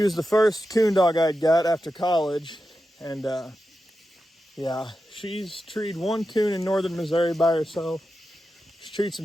was the first coon dog I'd got after college, and yeah, she's treed 1 coon in northern Missouri by herself. She's treed some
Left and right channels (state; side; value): normal; both; correlation 0.90